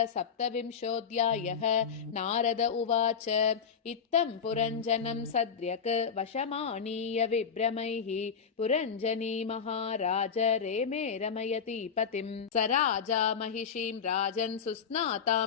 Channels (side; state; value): right; quieter; 6.7 dB